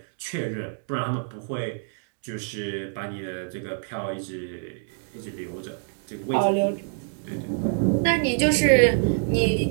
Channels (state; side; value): silent; left; 59 dB below the other